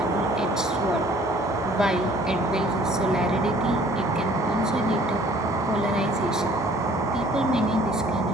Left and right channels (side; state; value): both; normal; correlation 0.55